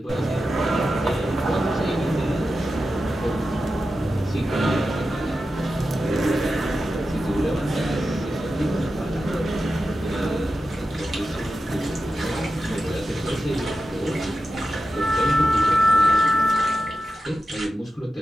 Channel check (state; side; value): normal; both; correlation 0.91